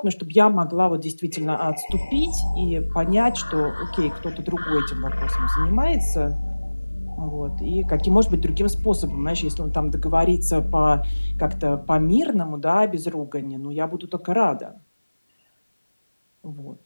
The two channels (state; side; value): inverted; both; correlation -1.00